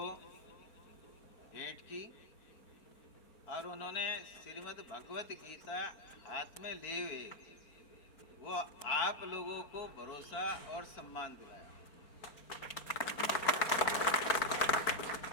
भेंट की और उन्होंने श्रीमद् भगवत गीता हाथ में ले हुए वो आप लोगों को भरोसा और सम्मान दिलाया।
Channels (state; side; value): late; right; 4.4 ms